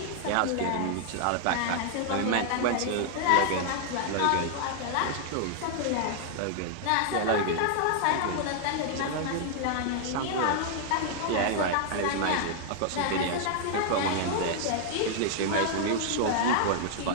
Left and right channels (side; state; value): both; different; correlation 0.00